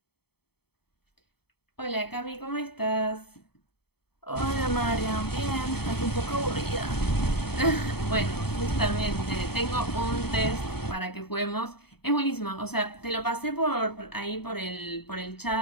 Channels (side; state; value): right; late; 0.96 ms